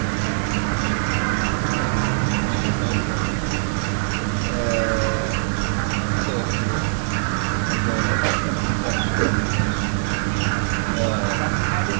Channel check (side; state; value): left; silent; 64 dB below the other